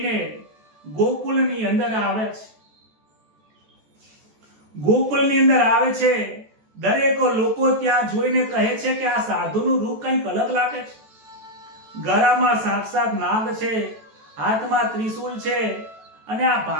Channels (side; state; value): left; late; 14 ms